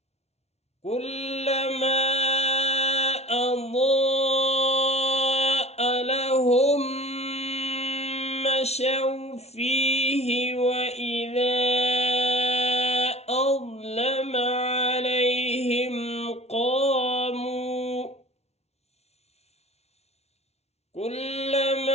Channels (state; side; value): late; right; 0.31 ms